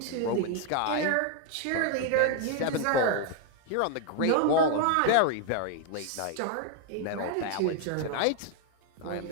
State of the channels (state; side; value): different; both; correlation 0.00